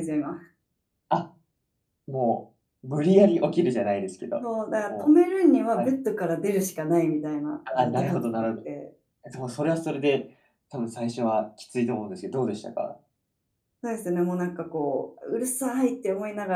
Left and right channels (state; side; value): identical; both; correlation 1.00